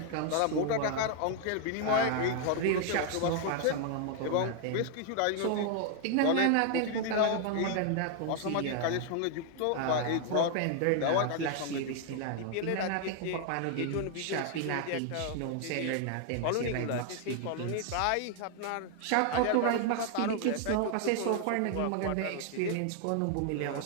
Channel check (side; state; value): both; different; correlation 0.00